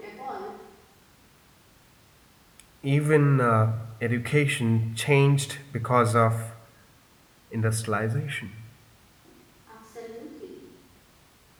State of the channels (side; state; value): both; identical; correlation 1.00